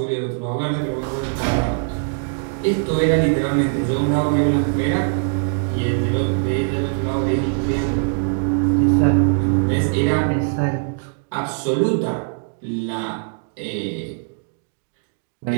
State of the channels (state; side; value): silent; left; digital silence